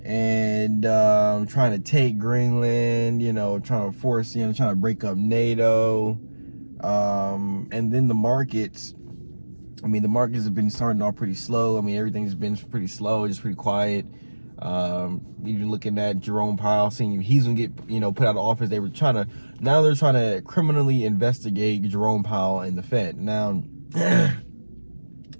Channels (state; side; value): inverted; both; correlation -1.00